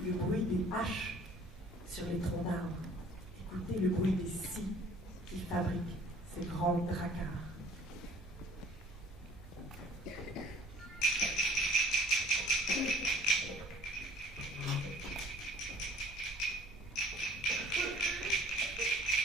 le bruit des haches sur les troncs d'arbres. Écoutez le bruit des scies qui fabriquent ces grands dracars.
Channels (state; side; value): normal; both; correlation 0.53